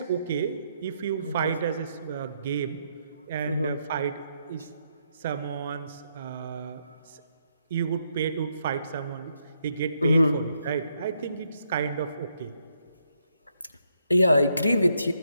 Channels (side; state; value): both; inverted; correlation -0.76